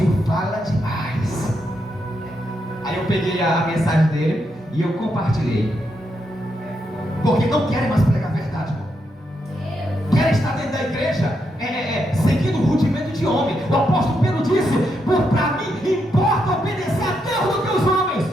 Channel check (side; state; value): both; normal; correlation 0.81